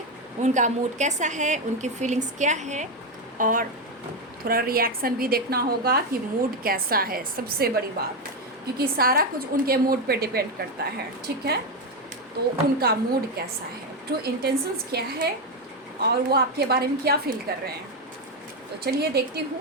उनका मूड कैसा है, उनकी फीलिंग्स क्या है, और थोड़ा रिएक्शन भी देखना होगा कि मूड कैसा है, सबसे बड़ी बात, क्योंकि सारा कुछ उनके मूड पे डिपेंड करता है। ठीक है, तो उनका मूड कैसा है, ट्रू इंटेंशंस क्या है, और वो आपके बारे में क्या फील कर रहे हैं। तो चलिए देखती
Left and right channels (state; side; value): normal; both; correlation 0.09